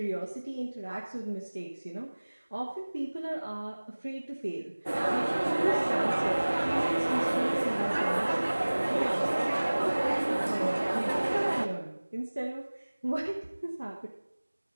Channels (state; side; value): inverted; both; correlation -1.00